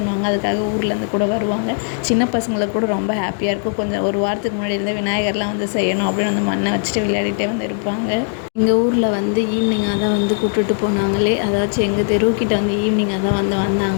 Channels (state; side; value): silent; right; 59 dB below the other